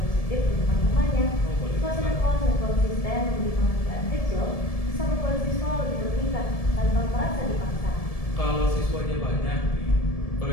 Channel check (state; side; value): late; right; 1.7 ms